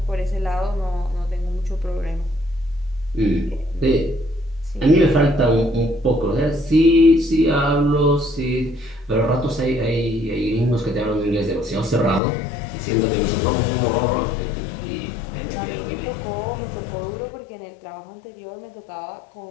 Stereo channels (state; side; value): drops out; right; at 12.2 s